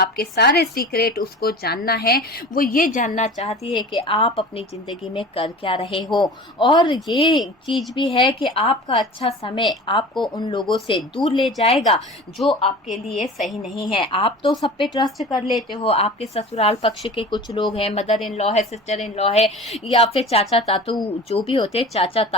सारे सीक्रेट उसको जानना है। वो ये जानना चाहती है कि आप अपनी ज़िंदगी में कर क्या रहे हो। और ये चीज़ भी है कि आपका अच्छा समय आपको उन लोगों से दूर ले जाएगा जो आपके लिए सही नहीं है। आप तो सब पे ट्रस्ट कर लेते हो, आपके ससुराल पक्ष के कुछ लोग हैं, मदर इन लॉ है, सिस्टर इन लॉ है, या फिर चाचा तातू जो भी होते, चाचा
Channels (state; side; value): normal; both; correlation 0.38